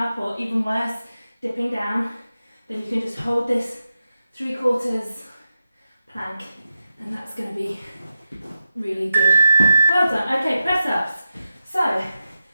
or even worse, dipping down, then you can just hold this 3/4 plank, and that's going to be really good. Well done. Okay, press ups. So,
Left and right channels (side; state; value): both; inverted; correlation -0.91